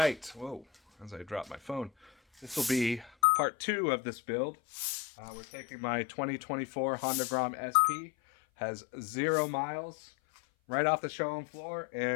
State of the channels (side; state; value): right; drops out; at 3.1 s